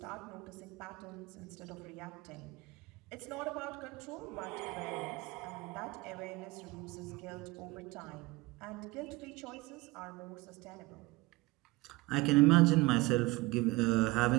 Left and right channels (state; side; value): quieter; left; 21.8 dB